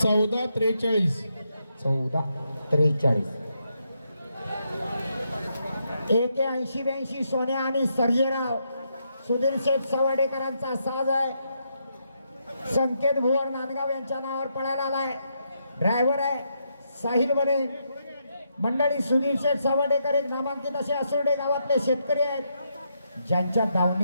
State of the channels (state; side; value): inverted; both; correlation -0.80